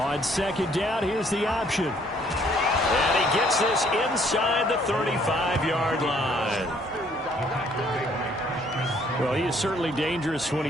second down, here's the option. And he gets this inside the 35-yard line. Well, he is certainly dangerous when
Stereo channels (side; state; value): both; normal; correlation 0.63